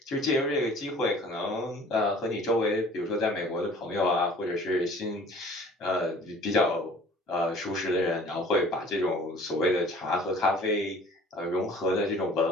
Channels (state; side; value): normal; both; correlation 0.49